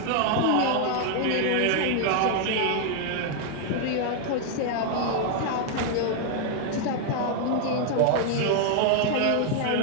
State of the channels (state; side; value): different; both; correlation 0.00